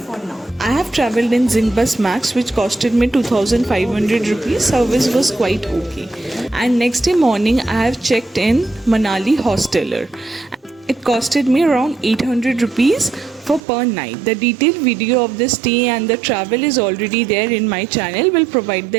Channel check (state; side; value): drops out; left; at 13.6 s